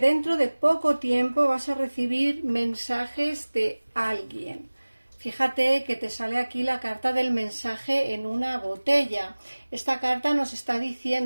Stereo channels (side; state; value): both; inverted; correlation -1.00